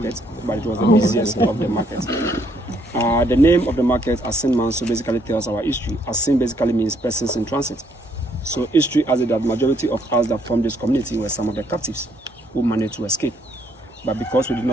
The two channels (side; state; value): both; normal; correlation 0.69